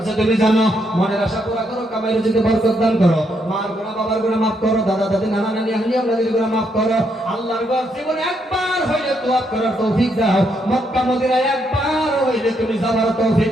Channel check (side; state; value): both; normal; correlation 0.76